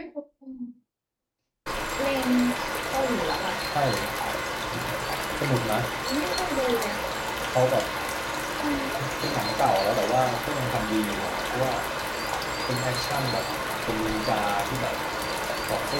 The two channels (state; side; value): identical; both; correlation 1.00